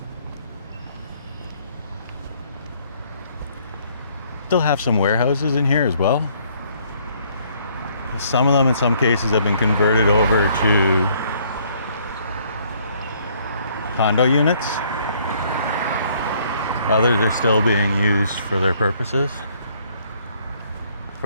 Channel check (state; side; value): inverted; both; correlation -0.64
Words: Still have some warehouses in here as well. Some of them in some cases have been converted over to condo units. Others are still being used for their purposes.